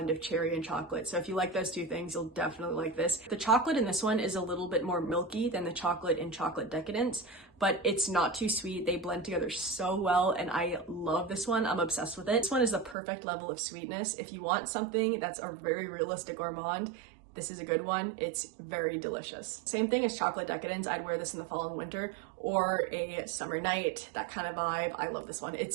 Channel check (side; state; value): left; drops out; at 13.0 s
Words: of cherry and chocolate. So if you like those two things, you'll definitely like this. The chocolate in this one is a little bit more milky than the chocolate in Chocolate Decadence, but it's not too sweet. They blend together so well, and I love this one. I'm obsessed with it. This one is the perfect level of sweetness. If you want something that's a very realistic gourmand, this is a good one. It's very delicious. Same thing as Chocolate Decadence. I'd wear this in the fall and winter or a summer night, that kind of vibe. I love this one.